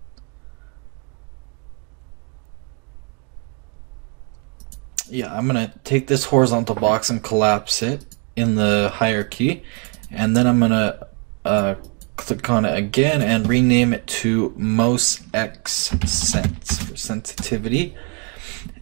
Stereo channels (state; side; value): quieter; left; 35.0 dB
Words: I'm gonna take this horizontal box and collapse it in the hierarchy, and then I'm gonna click on it again and rename it to most x sense for sensitivity.